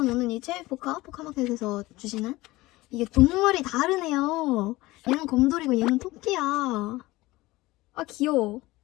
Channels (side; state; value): right; quieter; 19.6 dB